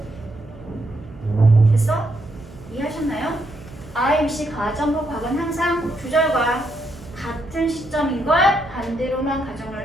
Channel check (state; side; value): noise; right; hum, 19 dB below the sound